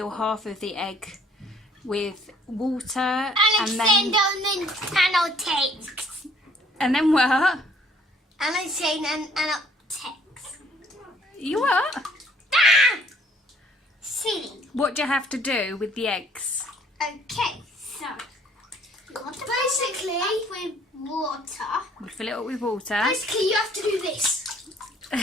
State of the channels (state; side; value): normal; both; correlation 0.60